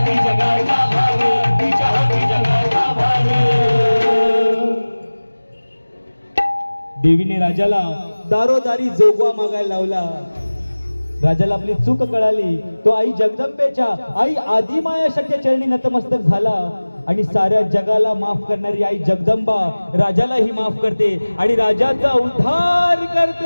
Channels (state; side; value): inverted; both; correlation -1.00